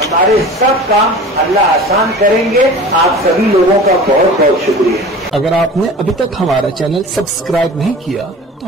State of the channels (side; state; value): both; normal; correlation 0.39